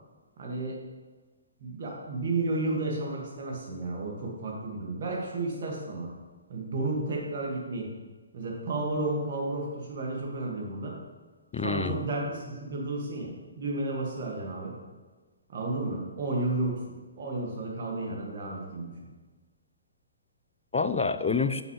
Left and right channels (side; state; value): both; inverted; correlation -0.36